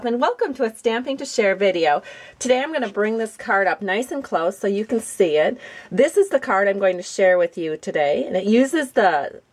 and welcome to a Stamping to Share video. Today I'm going to bring this card up nice and close so you can see it. This is the card I'm going to share with you today, and it uses the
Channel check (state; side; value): identical; both; correlation 1.00